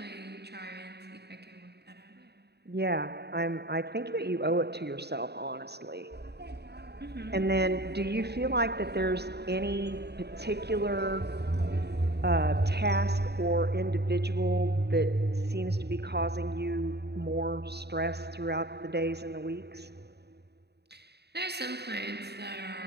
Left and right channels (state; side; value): late; left; 0.48 ms